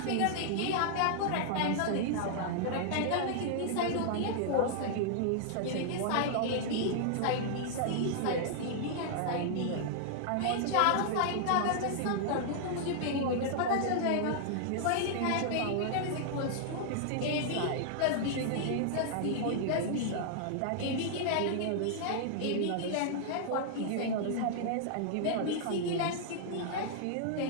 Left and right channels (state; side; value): different; both; correlation -0.01